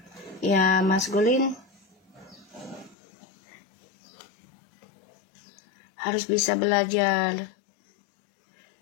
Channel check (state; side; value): drops out; right; at 3.0 s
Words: ya maskulin harus bisa belajar